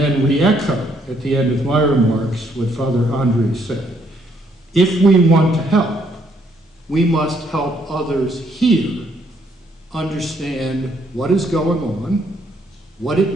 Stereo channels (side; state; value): both; normal; correlation 0.70